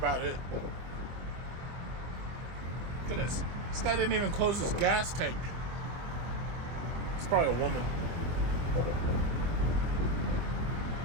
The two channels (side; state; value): left; late; 24 ms